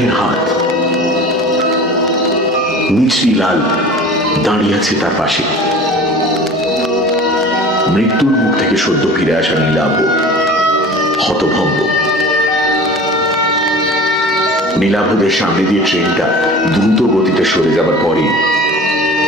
হাত। মিছরিলাল দাঁড়িয়ে আছে তার পাশে। মৃত্যুর মুখ থেকে সদ্য ফিরে আসা নীলাভ হতভম্ব। নীলাভদের সামনে দিয়ে ট্রেনটা দ্রুত গতিতে সরে যাবার পরে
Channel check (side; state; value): both; normal; correlation 0.39